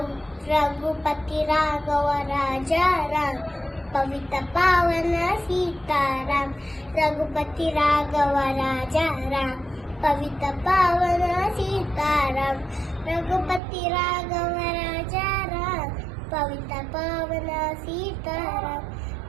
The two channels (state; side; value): drops out; left; at 13.6 s